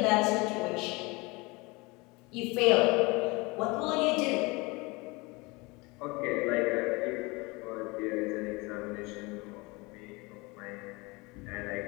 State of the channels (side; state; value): right; quieter; 25.4 dB